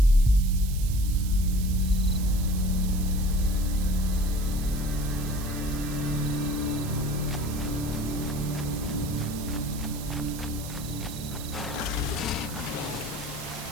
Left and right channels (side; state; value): right; noise; hiss, 12 dB below the sound